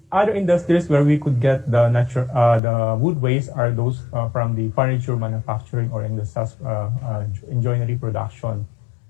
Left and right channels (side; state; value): right; drops out; at 2.6 s